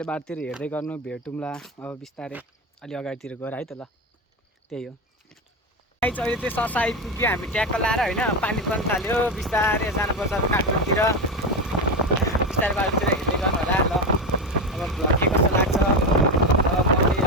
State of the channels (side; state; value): both; normal; correlation 0.16